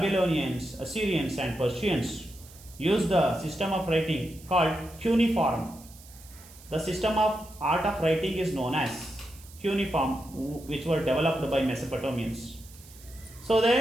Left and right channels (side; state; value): right; noise; hiss, 21 dB below the sound